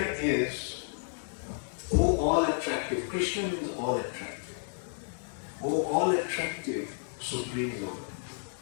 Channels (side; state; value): right; silent; digital silence